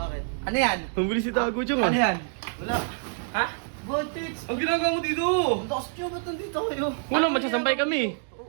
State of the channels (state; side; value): silent; left; digital silence